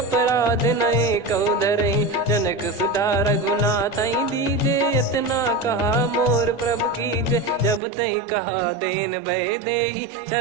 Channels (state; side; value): drops out; left; at 7.8 s